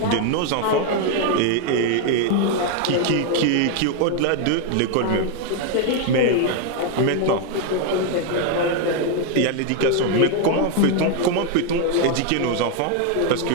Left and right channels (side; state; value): both; different; correlation 0.01